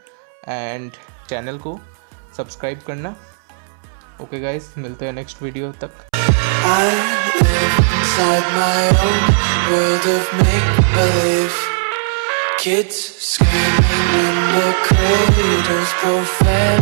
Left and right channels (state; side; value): silent; left; 69 dB below the other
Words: एंड चैनल को सब्सक्राइब करना। ओके गाइस, मिलते हैं नेक्स्ट वीडियो तक। I live inside my own world of make-believe. Kids screaming in their cradles,